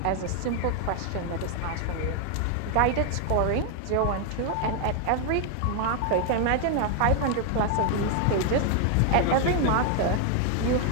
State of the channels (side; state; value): both; different; correlation 0.00